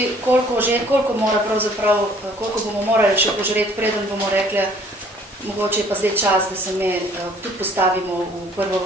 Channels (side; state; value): both; normal; correlation 0.57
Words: koliko bomo morali še požreti, preden bomo rekli, mogoče je pa zdaj čas, da se me tudi postavimo v prvo